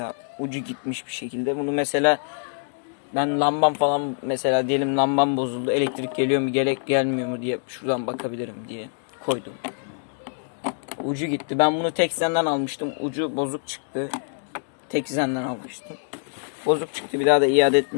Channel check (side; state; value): right; silent; digital silence